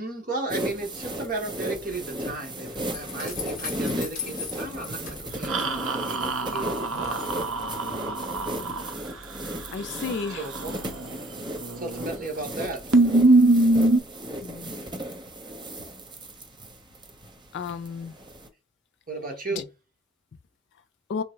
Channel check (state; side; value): normal; both; correlation 0.56